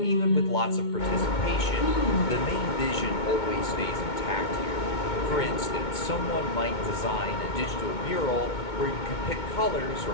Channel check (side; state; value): right; late; 2.2 ms